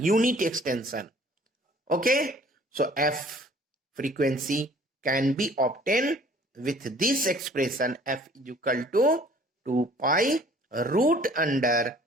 Okay, so f frequency can be obtained with this expression f is equal to 2 pi root under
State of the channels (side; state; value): both; normal; correlation 0.54